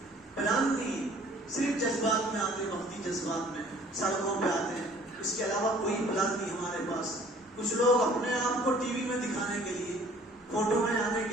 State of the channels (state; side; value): normal; both; correlation 0.54